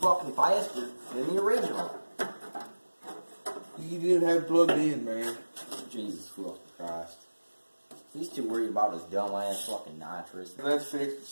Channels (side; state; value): both; inverted; correlation -1.00